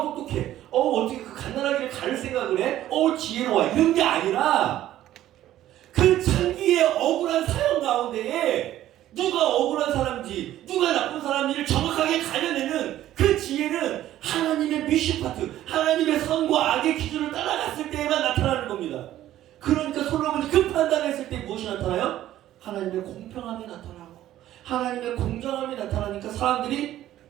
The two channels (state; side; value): quieter; left; 13.2 dB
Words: 어떻게 그 갓난아기를 가를 생각을 해? 지혜로워, 이런 게 아니라 그 창기의 억울한 사연 가운데에 누가 억울한 사람인지 누가 나쁜 사람인지를 정확하게 가려내는 그 지혜는 하나님의 미시파트, 하나님의 선과 악의 기준을 따라갔을 때에만 나타나는 겁니다. 그러니까 솔로몬이 그 판단했을 때 무엇이 나타나요? 하나님의 공평함이 나타나고 하나님의 공정함이 나타나니까 사람들이